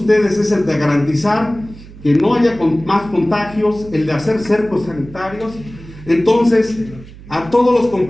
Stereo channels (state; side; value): noise; right; hum, 18 dB below the sound